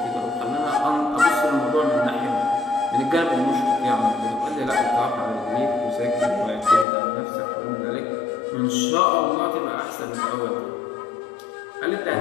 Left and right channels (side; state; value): right; drops out; at 6.9 s